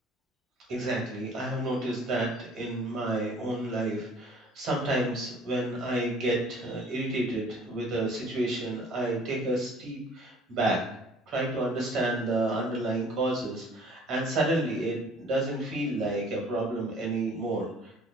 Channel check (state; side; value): normal; both; correlation 0.52